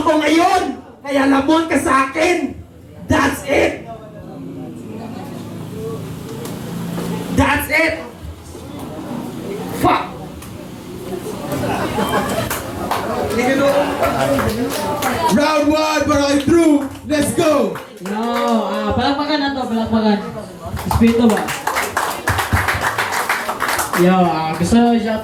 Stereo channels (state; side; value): identical; both; correlation 1.00